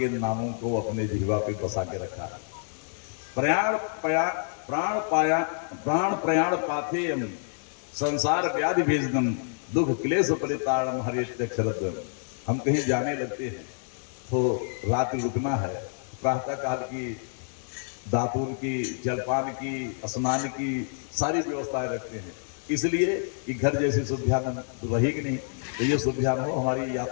नामों को अपने जिह्वा पे बसा के रखा। प्राण प्रयाण पाथेयम संसार व्याधि भेजनम दुख क्लेश परिताड़म हरित्यक्षरद्वयम्। हम कहीं जाने लगते हैं तो रात रुकना है, प्रातः काल की दातुर की, जलपान की, स्नान की सारी व्यवस्थाएं रखते हैं, इसलिए कि घर जैसी सुविधा रहेगी नहीं, तो ये सुविधा न हो, हमारी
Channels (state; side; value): silent; right; digital silence